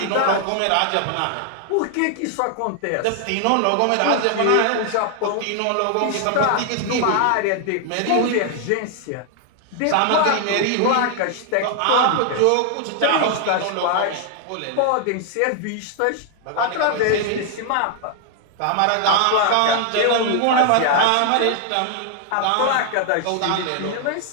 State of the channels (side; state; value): both; different; correlation 0.00